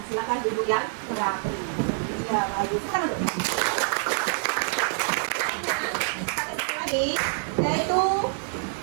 silakan duduk yang rapi. Iya, bagus. Kita duduk. Lagi, yaitu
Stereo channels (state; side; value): silent; left; digital silence